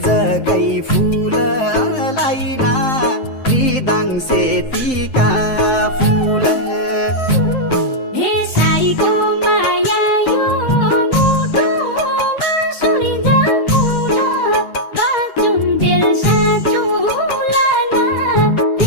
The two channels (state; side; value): late; right; 7.7 ms